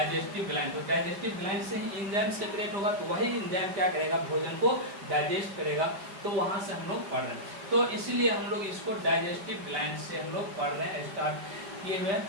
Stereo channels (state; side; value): late; left; 5.2 ms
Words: ग्लैंड। तो डाइजेस्टिव ग्लैंड से ही एंजाइम सेक्रेट होगा, तो वही एंजाइम क्या करेगा, भोजन को डाइजेस्ट करेगा। तो वहाँ से हम लोग पढ़ रहे हैं, तो इसीलिए हम लोग इसको डाइजेस्टिव ग्लैंड से हम लोग पढ़ रहे हैं, स्टार्ट किए हुए हैं।